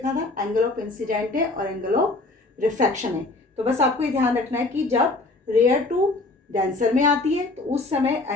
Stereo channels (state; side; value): quieter; right; 3.2 dB